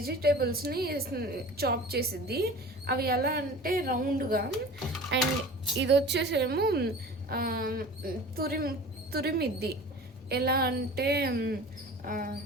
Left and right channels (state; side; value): normal; both; correlation 0.39